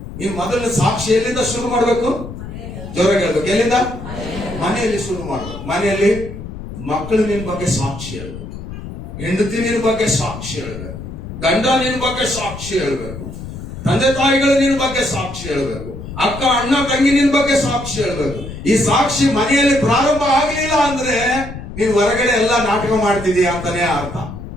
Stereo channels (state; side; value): noise; left; rumble, 10 dB below the sound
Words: ನೀನ್ ಮೊದಲನೇ ಸಾಕ್ಷಿ ಎಲ್ಲಿಂದ ಶುರು ಮಾಡ್ಬೇಕು? ಜೋರಾಗಿ ಹೇಳ್ಬೇಕು. ಎಲ್ಲಿಂದ? ಮನೆಯಲ್ಲಿ ಶುರು ಮಾಡ್ಬೇಕು. ಮನೆಯಲ್ಲಿ ಮಕ್ಕಳು ನಿನ್ ಬಗ್ಗೆ ಸಾಕ್ಷಿ ಹೇಳ್ಬೇಕು, ಹೆಂಡತಿ ನಿನ್ ಬಗ್ಗೆ ಸಾಕ್ಷಿ ಹೇಳ್ಬೇಕು, ಗಂಡ ನಿನ್ ಬಗ್ಗೆ ಸಾಕ್ಷಿ ಹೇಳ್ಬೇಕು, ತಂದೆ ತಾಯಿಗಳು ನಿನ್ ಬಗ್ಗೆ ಸಾಕ್ಷಿ ಹೇಳ್ಬೇಕು, ಅಕ್ಕ ಅಣ್ಣ ತಂಗಿ ನಿನ್ ಬಗ್ಗೆ ಸಾಕ್ಷಿ ಹೇಳ್ಬೇಕು. ಈ ಸಾಕ್ಷಿ ಮನೆಯಲ್ಲಿ ಪ್ರಾರಂಭ ಆಗ್ಲಿಲ್ಲ ಅಂದ್ರೆ ನೀನ್ ಹೊರಗಡೆ ಎಲ್ಲ ನಾಟಕ ಮಾಡ್ತಿದೀಯ ಅಂತಾನೆ ಅರ್ಥ.